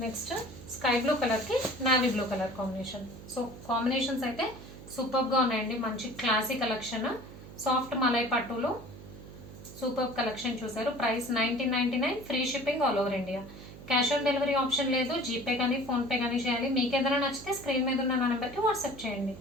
Next sky blue కలర్కి navy blue colour combination. So combinations అయితే సూపర్గా ఉన్నాయండి. మంచి క్లాసీ కలెక్షన్. సాఫ్ట్ మలై పట్టులో సూపర్ కలెక్షన్ చూసారు. Price 1999, free shipping all over India. Cash on delivery option లేదు. జీపే కానీ ఫోన్పే కానీ చేయాలి. మీకు ఏదైనా నచ్చితే స్క్రీన్ మీద ఉన్న నా నెంబర్కి వాట్సాప్ చేయండి.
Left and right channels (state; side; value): noise; right; hum, 16 dB below the sound